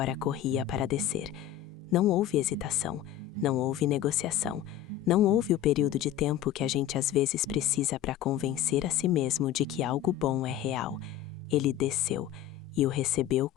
corria para descer. Não houve hesitação, não houve negociação, não houve o período de tempo que a gente às vezes precisa para convencer a si mesmo de que algo bom é real. Ele desceu e o recebeu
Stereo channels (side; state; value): right; quieter; 11.4 dB